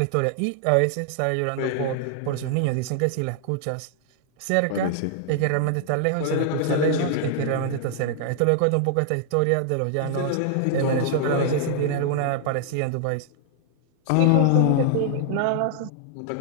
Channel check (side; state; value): both; different; correlation -0.01